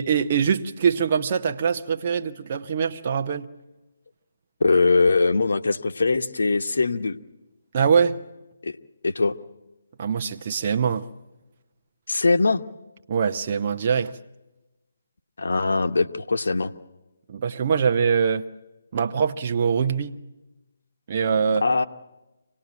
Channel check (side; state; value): both; inverted; correlation -0.82